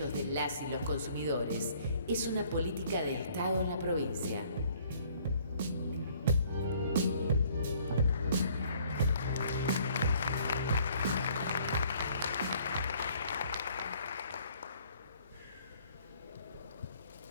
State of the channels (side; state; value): both; inverted; correlation -0.59